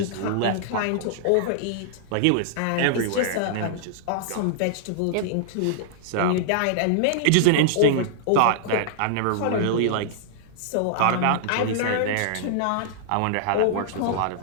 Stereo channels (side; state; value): both; different; correlation -0.01